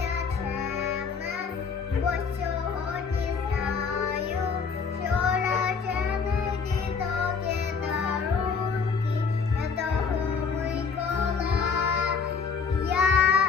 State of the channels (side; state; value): right; quieter; 5.6 dB